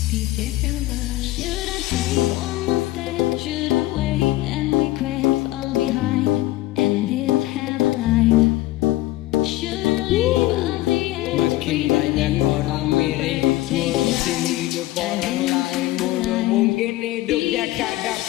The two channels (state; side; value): quieter; right; 16.9 dB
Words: DJ Fella. Should I take one more step? Should I wait and regret all behind and live have a life? Should I leave all the end? Makin banyak orang mirip ngurusin hidup orang lain. Mulu mungkin hidupnya kagak